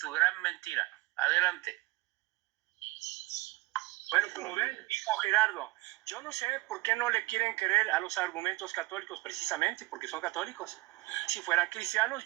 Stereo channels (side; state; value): left; quieter; 21.9 dB